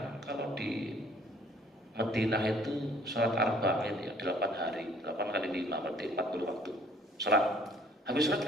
kalau di Madinah itu sholat arba'in ya 8 hari, 8 kali 5 berarti 40 waktu sholat. Habis sholat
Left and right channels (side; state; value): both; normal; correlation 0.57